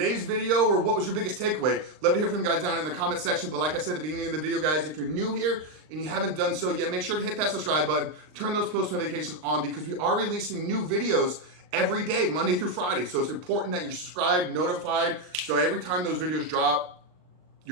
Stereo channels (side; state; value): left; late; 39 ms